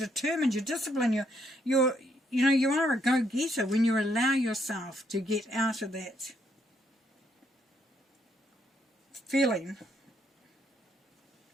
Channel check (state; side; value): normal; both; correlation 0.73